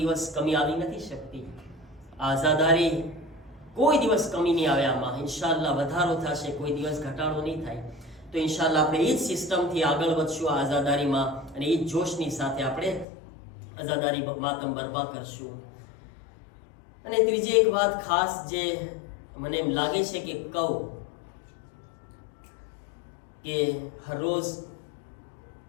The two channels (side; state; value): right; drops out; at 13.1 s